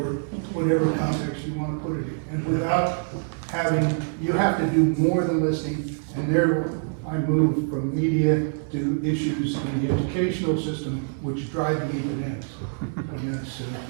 whatever context you want to put it in. And without having, you have to do more than listening, and there I move from media to issues in the educational system which drive the even ends. And that's,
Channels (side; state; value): left; silent; digital silence